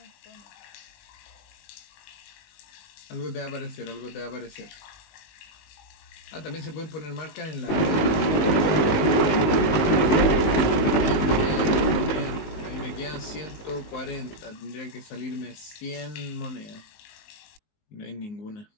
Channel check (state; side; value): late; right; 19 ms